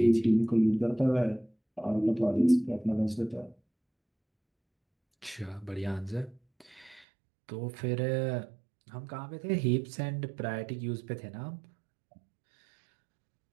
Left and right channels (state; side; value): drops out; left; at 7.1 s